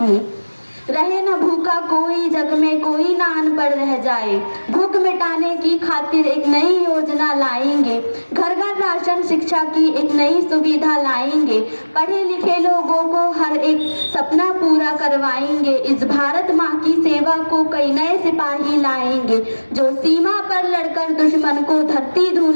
रहे न भूखा कोई, जग में कोई ना अनपढ़ रह जाए। भूख मिटाने की खातिर एक नई योजना लाएंगे। घर घर राशन, शिक्षा की एक नई सुविधा लाएंगे। पढ़े लिखे लोगों को हर एक सपना पूरा करवाएंगे। इस भारत माँ की सेवा को कई नए सिपाही लाएंगे, जो सीमा पर लड़कर दुश्मन को धरती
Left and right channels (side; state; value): both; inverted; correlation -1.00